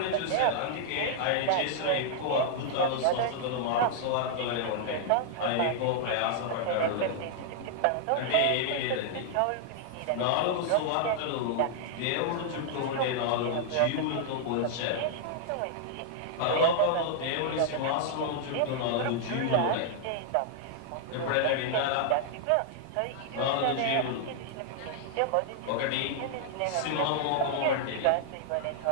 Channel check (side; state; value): both; different; correlation -0.01